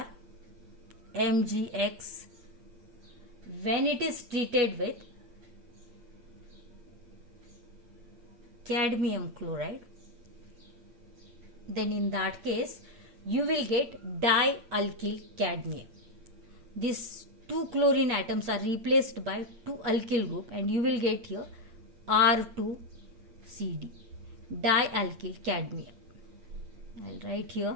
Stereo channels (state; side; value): late; left; 8.7 ms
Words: RMgX. When it is treated with cadmium chloride, then in that case you will get dialkyl cadmium. These 2 chlorine atoms are replaced by 2 alkyl group and you will get here R2CD, dialkyl cadmium. I'll write